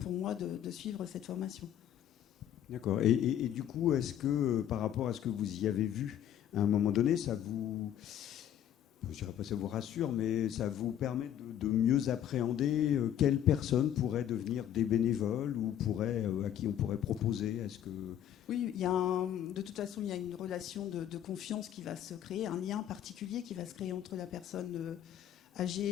moi de suivre cette formation. D'accord. Et du coup, est-ce que par rapport à ce que vous y avez vu à un moment donné, ça vous... Je ne dirais pas ça vous rassure, mais ça vous permet de mieux appréhender quelles personnes pourraient devenir des bénévoles ou à qui on pourrait proposer? Est-ce que... Oui, de toute façon, il y a une relation de confiance qui va se créer, un lien particulier qui va se créer entre la personne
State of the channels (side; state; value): right; quieter; 10.5 dB